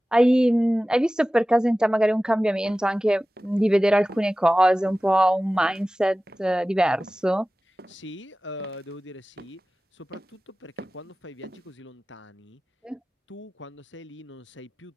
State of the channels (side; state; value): both; normal; correlation 0.97